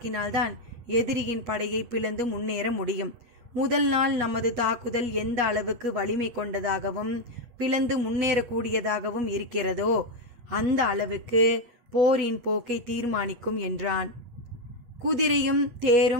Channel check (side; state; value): left; late; 8.3 ms